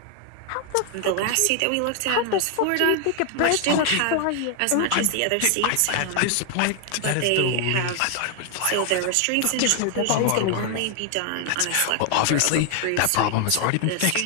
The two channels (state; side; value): different; both; correlation 0.00